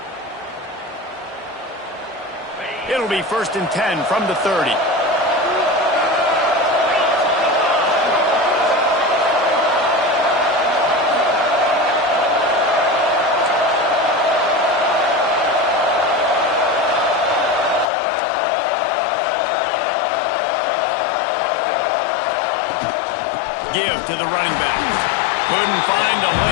It'll be 1st and 10 from the 30. give to the running back. Couldn't find a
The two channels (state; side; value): drops out; right; at 17.9 s